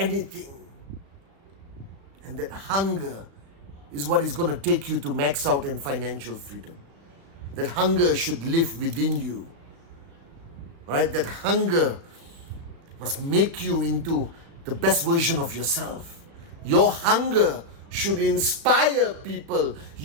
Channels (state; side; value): late; left; 35 ms